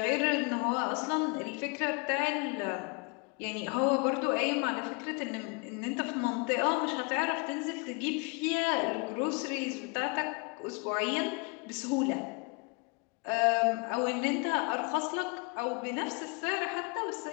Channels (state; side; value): quieter; right; 31.8 dB